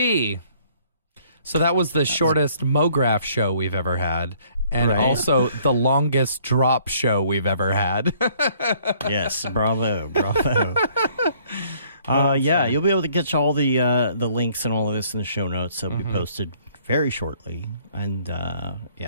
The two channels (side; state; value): both; inverted; correlation -0.61